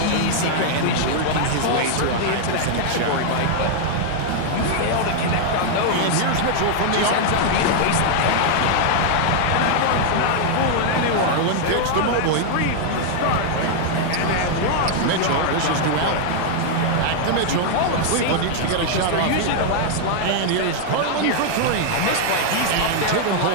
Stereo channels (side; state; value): both; different; correlation 0.00